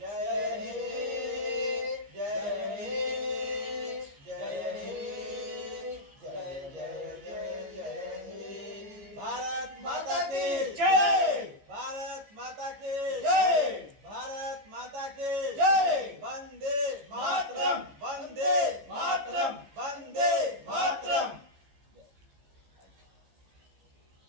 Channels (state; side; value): late; left; 15 ms